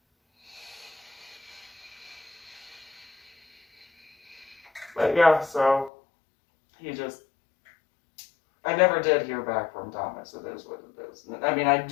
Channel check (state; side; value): drops out; right; at 5.9 s